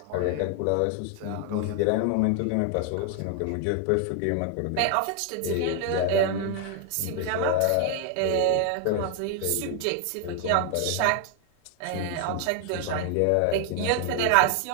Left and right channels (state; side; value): different; both; correlation 0.00